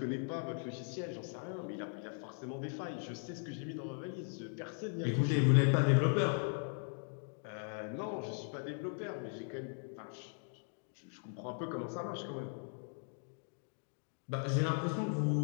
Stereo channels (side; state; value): right; silent; 52 dB below the other